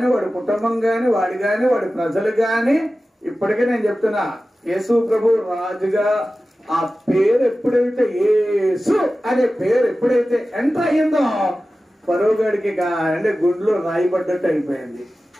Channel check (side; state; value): both; normal; correlation 0.95